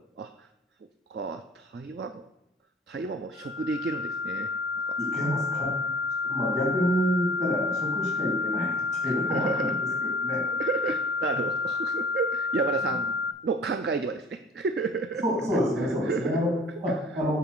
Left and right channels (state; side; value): normal; both; correlation 0.47